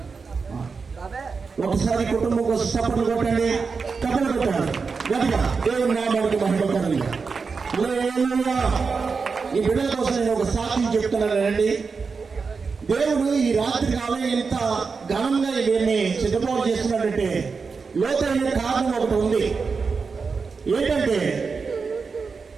ఒకసారి కుటుంబం కోసం చప్పట్లు కొట్టండి, చప్పట్లు కొట్టాలి గట్టిగా. దేవుని నామానికి మహిమకరంగా. ఈ బిడ్డల కోసం నేను ఒక సాక్ష్యం చెప్తున్నానండి. దేవుడు ఈ రాత్రి కాలం ఇంత ఘనంగా వీరిని సిద్ధపాటు చేస్తున్నాడంటే లోతైన కారణం ఒకటి ఉంది. ఏంటంటే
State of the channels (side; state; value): left; quieter; 5.0 dB